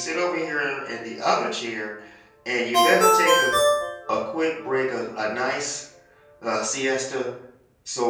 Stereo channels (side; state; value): both; identical; correlation 1.00